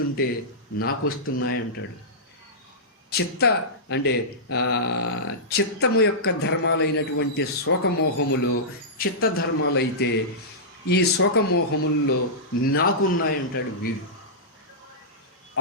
నాకు వస్తున్నాయంటాడు. చిత్తము యొక్క ధర్మాలైనటువంటి శోకమోహములు చిత్తధర్మాలైతే ఈ శోకమోహముల్లో నాకున్నాయంటాడు వీడు.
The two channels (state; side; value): normal; both; correlation -0.15